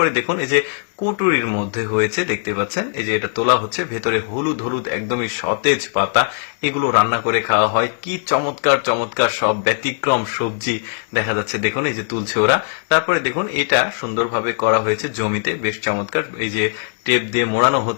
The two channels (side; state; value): right; silent; digital silence